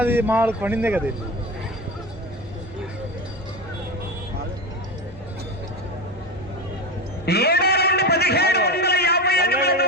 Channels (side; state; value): both; normal; correlation 0.22